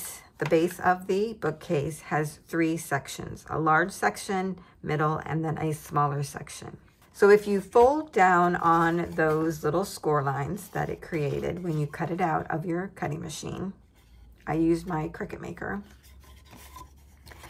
the base of the bookcase, has 3 sections, a large section, middle, and then a smaller section. So if you fold down on those little score lines that it created when you cut it out of your cutting machine, I used my Cricut Maker.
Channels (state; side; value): identical; both; correlation 1.00